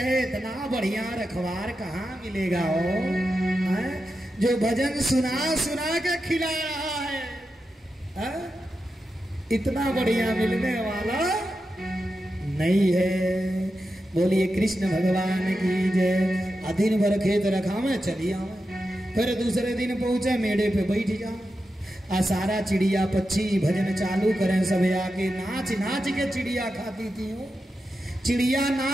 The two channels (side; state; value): both; normal; correlation 0.89